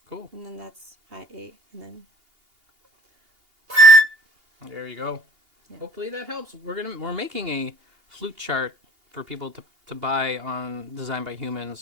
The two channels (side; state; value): left; late; 2.8 ms